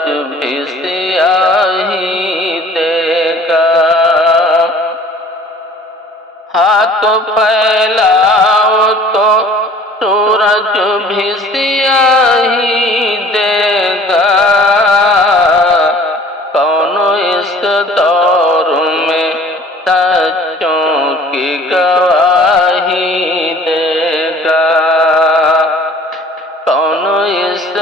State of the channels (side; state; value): both; normal; correlation 0.49